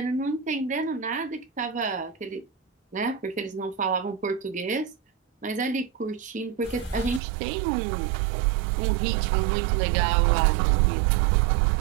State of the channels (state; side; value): drops out; left; at 7.2 s